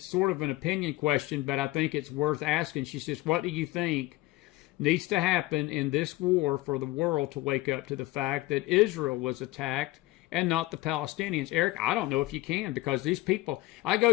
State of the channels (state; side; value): quieter; right; 19.3 dB